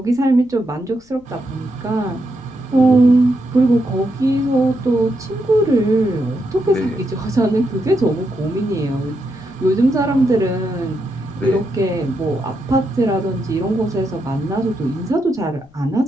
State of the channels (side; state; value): left; noise; rumble, 28 dB below the sound